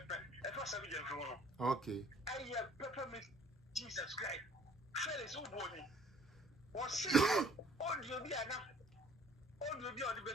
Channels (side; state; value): both; normal; correlation 0.55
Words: Okay. I have peppermint Jesus Christ. Fellas who body was audio be enough. Audio be on the